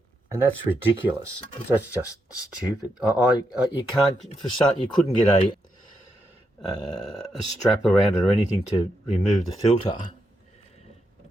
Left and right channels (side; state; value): both; normal; correlation 0.82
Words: and that's ridiculous. That's just stupid. You can't, for start, you couldn't get a strap around it or anything to remove the filter.